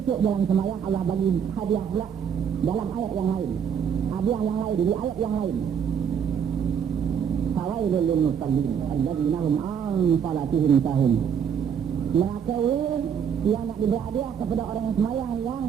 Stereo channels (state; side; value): quieter; left; 7.7 dB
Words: dalam semayang, Allah bagi hadiah pula dalam ayat yang lain. Hadiah yang lain, di ayat yang lain. Fawailul lil musallin alladzina hum an salatihim sahun. Neraka yang nak diberi hadiah kepada orang yang semayang yang